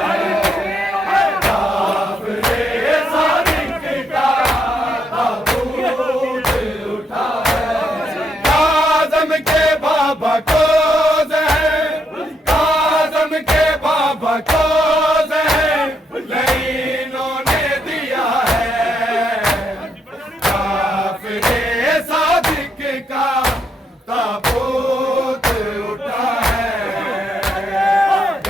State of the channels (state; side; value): normal; both; correlation 0.77